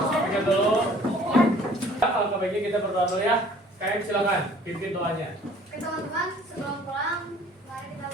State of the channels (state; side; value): normal; both; correlation 0.53